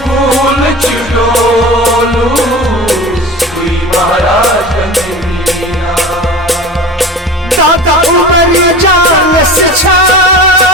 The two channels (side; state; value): both; normal; correlation 0.34